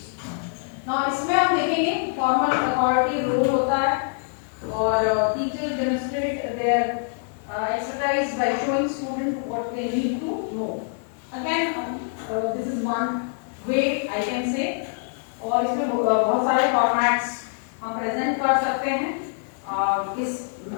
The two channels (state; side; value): silent; right; 62 dB below the other